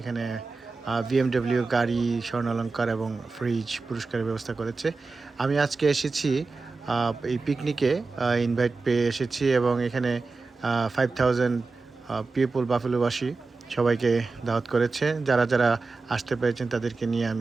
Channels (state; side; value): quieter; left; 4.0 dB